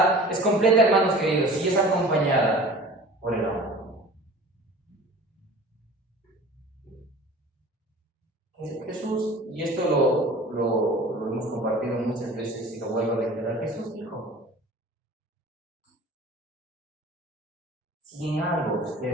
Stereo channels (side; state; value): both; normal; correlation 0.42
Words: completa, hermanos queridos, y es acompañada por el amor. Jesús, y esto lo hemos compartido muchas veces y lo vuelvo a reiterar, Jesús dijo, si en algo